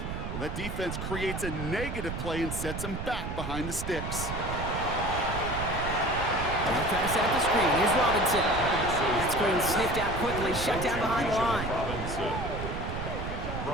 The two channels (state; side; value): noise; right; rumble, 5 dB below the sound